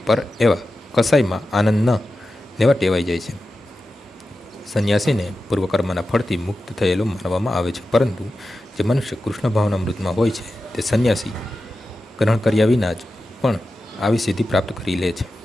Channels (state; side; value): normal; both; correlation 0.92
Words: પર એવા કસાઈમાં આનંદ ન લેવા ટેવાઈ જાય છે. સંન્યાસીને પૂર્વકર્મના ફળથી મુક્ત થયેલો માનવામાં આવે છે, પરંતુ જે મનુષ્ય કૃષ્ણ ભાવનામૃતમાં હોય છે તે સંન્યાસી ગ્રહણ કર્યા વિના જ પણ આવી સિદ્ધિ પ્રાપ્ત કરી લે છે.